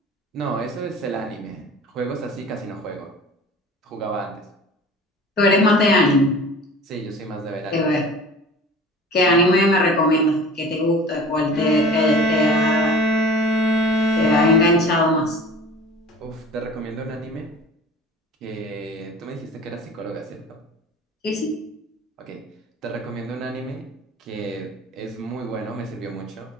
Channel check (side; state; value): both; normal; correlation 0.41